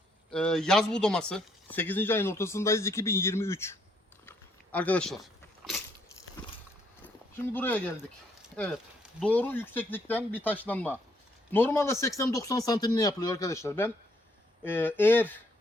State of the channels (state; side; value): normal; both; correlation 0.70